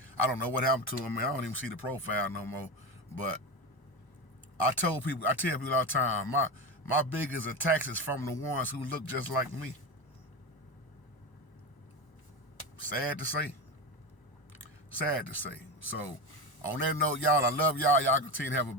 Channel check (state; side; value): late; right; 1.0 ms